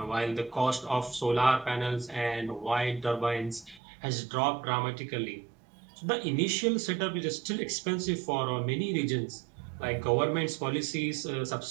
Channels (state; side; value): drops out; left; at 3.8 s